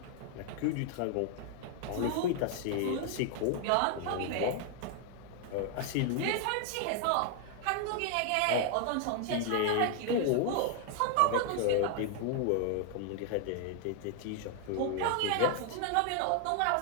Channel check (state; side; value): different; both; correlation 0.00